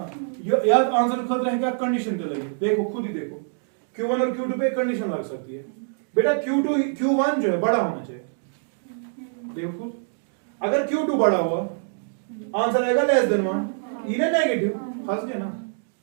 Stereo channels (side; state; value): left; silent; digital silence